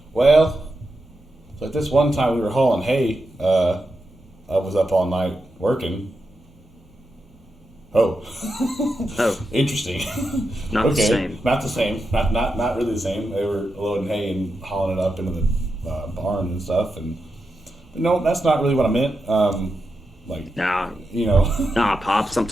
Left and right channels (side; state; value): both; normal; correlation 0.88